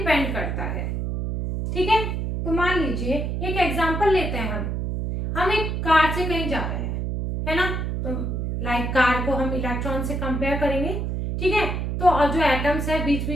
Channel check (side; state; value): right; noise; hum, 2 dB below the sound